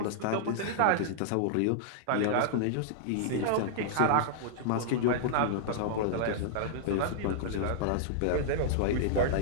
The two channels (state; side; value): different; both; correlation -0.01